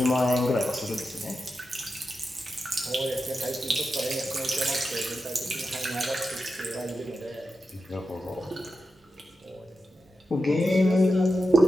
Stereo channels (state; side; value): normal; both; correlation 0.89